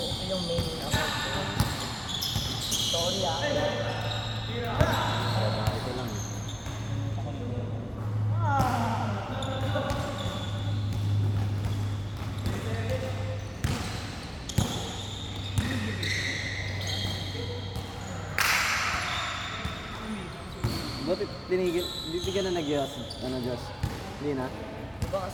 yung main account ko. Sorry ah. Babae ko lang. Ba't tinigil? Hindi ka na nag-Diyos? Ano, Diyos? Hindi na? Di ba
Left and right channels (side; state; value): both; identical; correlation 1.00